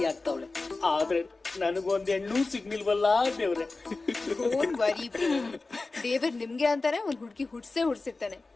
ಆಗ್ತಾವಳೆ. ಆದ್ರೆ ನನಗೊಂದ್ ಹೆಣ್ಣು ಸಿಗ್ನಿಲ್ವಲ್ಲ ದೇವ್ರೆ. ದೇವ್ರ ನಿಮ್ಗೆ ಅಂತಾನೆ ಒಂದ್ ಹುಡುಗಿ ಹುಡ್ಸಿರ್ತಾನೆ,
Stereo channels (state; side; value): quieter; right; 3.5 dB